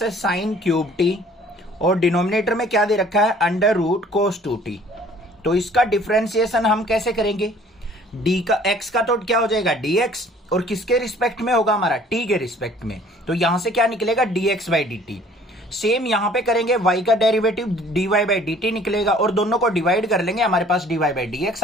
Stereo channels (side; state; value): both; normal; correlation 0.54